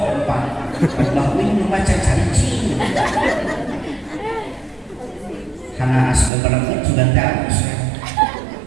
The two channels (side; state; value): left; drops out; at 6.3 s